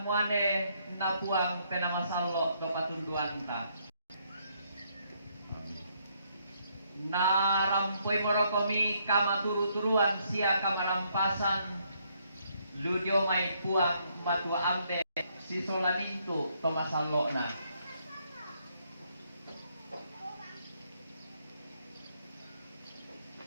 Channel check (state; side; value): inverted; both; correlation -0.72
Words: muane na puang penamasallo do patunduan ta. Narampoy morokomi kamaturu-turuan sia kamarampasan ludio may puang matua ambe si solamintu tomasallo na.